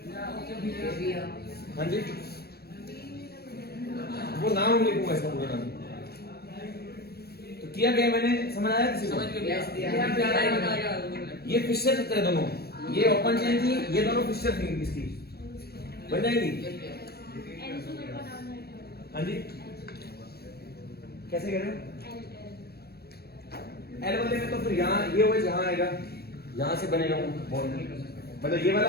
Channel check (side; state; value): right; late; 0.46 ms